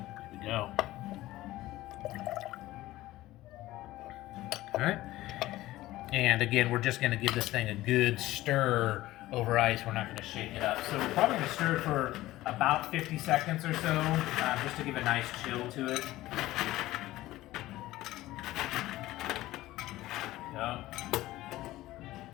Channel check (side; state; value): right; quieter; 16.6 dB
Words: we go. right. And again, we're just going to give this thing a good stir over ice. We're not going to shake it up. So we're probably going to stir it for about 50 seconds or so, just to give a nice chill to it. There we go.